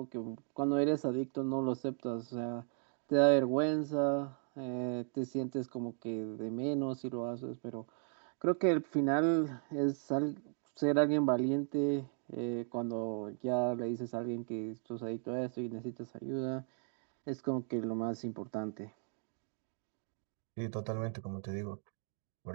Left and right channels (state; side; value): silent; left; 53 dB below the other